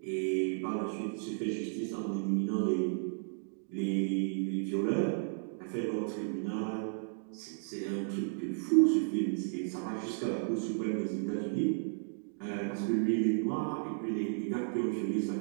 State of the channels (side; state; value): left; silent; digital silence